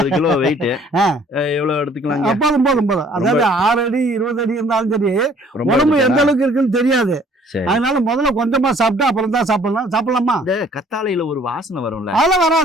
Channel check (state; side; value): normal; both; correlation 0.57